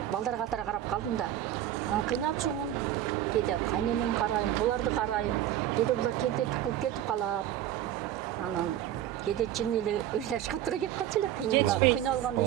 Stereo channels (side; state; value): left; quieter; 11.9 dB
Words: балдар катары карап калдым да. Анан кыйналчумун. Кээде кайненем карайм, буларды карайм. Кээде булар тентекти кылып кетип калат. Анан кээде чын эле ыйлашка туура келип калчу эле. Кыйналганда